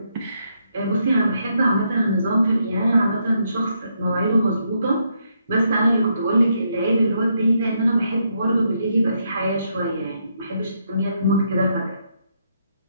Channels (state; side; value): inverted; both; correlation -0.77